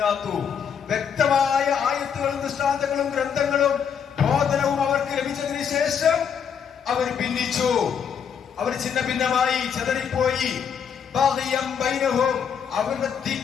വ്യക്തമായ ആയത്തുകളും ദൃഷ്ടാന്തങ്ങളും ഗ്രന്ഥങ്ങളും ബോധനവും അവർക്ക് ലഭിച്ചതിന് ശേഷം അവർ ഭിന്നിച്ചു, അവർ ഛിന്ന ഭിന്നമായി ചിതറിപ്പോയി. അവരുടെ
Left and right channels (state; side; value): quieter; right; 7.4 dB